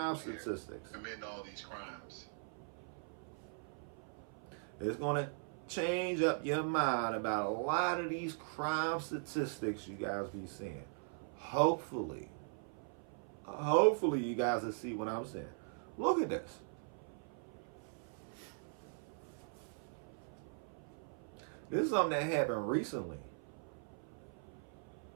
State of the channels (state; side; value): silent; left; 51 dB below the other